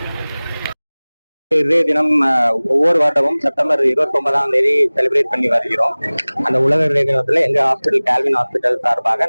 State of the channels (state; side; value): inverted; both; correlation -1.00